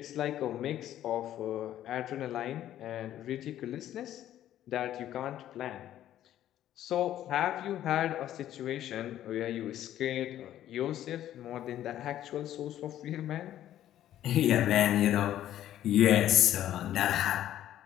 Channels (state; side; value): quieter; right; 12.2 dB